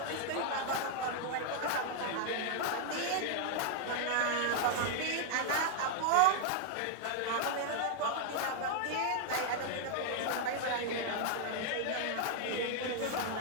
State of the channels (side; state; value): both; different; correlation 0.00